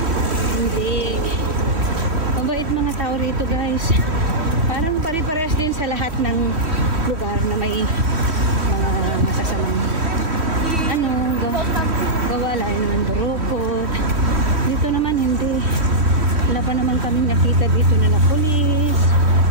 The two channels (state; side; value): late; left; 3.2 ms